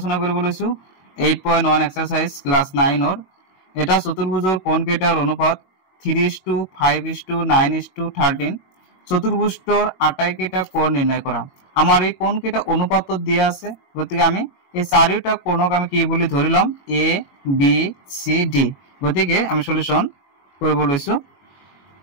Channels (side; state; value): right; late; 21 ms